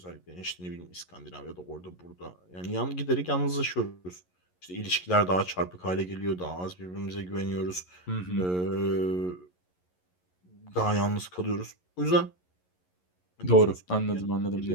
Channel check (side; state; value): right; late; 11 ms